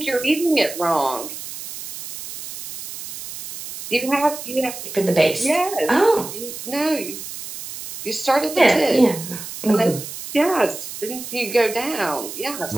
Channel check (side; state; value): right; noise; hiss, 10 dB below the sound